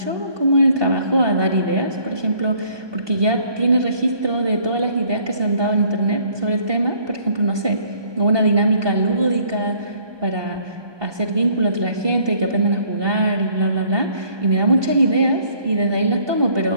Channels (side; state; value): left; late; 1.2 ms